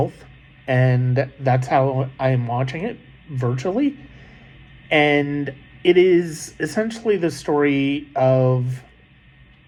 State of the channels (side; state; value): both; identical; correlation 1.00